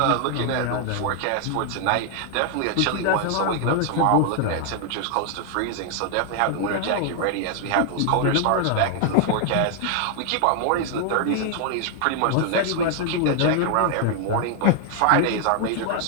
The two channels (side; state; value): both; different; correlation 0.00